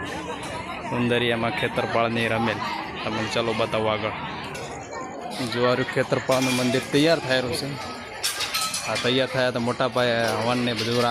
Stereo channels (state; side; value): identical; both; correlation 1.00